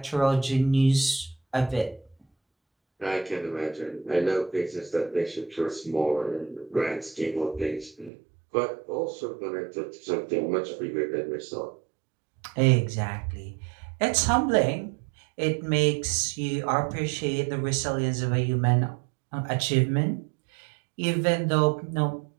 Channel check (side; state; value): left; drops out; at 8.1 s